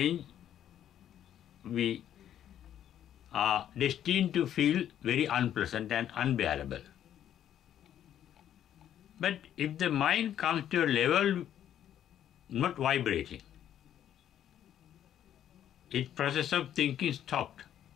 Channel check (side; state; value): right; quieter; 10.6 dB